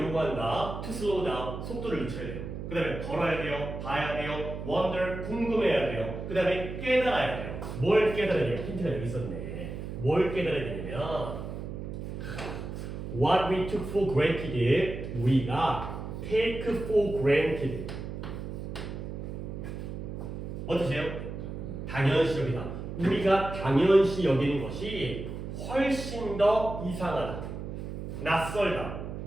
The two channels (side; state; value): right; noise; hum, 7 dB below the sound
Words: 요구한다? To slow down, 속도를 늦춰야 돼요. 그 다음에 걸어야 돼요, 봐야 돼요, wonder, 궁금해야 돼요. 그 다음에 깨달아야 돼요. 뭘 깨달아야 돼요? 힌트가 여기 있었네. 뭘 깨달아야 되냐면 What we took for granted, 우리가 take for granted. 어떠세요? 당연시 여기다. 우리가 당연시 여기는 것이 훨씬 더 이상하다, 낯설다,